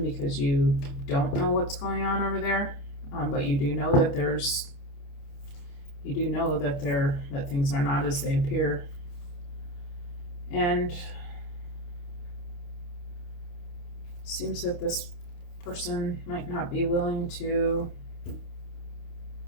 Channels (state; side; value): late; right; 28 ms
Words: because you don't know what's going on over there, but you do know that that things are not as they appear. And seems that this person might not be willing to